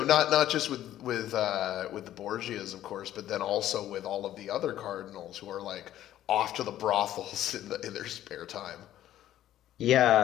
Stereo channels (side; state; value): right; quieter; 12.6 dB